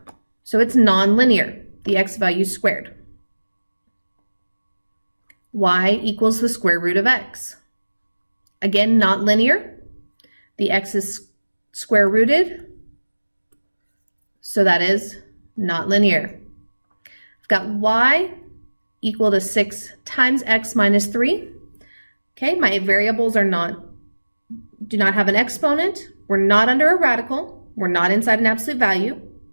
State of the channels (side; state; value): both; inverted; correlation -1.00